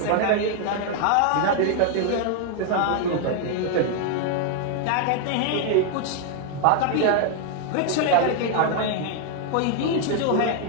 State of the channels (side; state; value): both; different; correlation 0.00